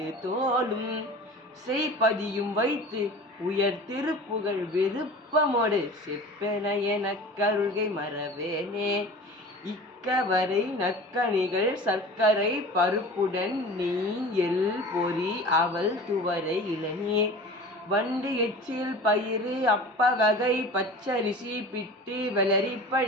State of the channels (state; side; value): normal; both; correlation 0.38